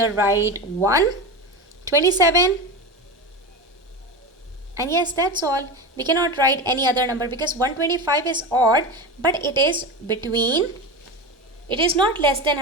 write 1, 27, and yes, that's all. We cannot write any other number because 125 is odd, but it is between, it is not less than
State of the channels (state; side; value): normal; both; correlation 0.23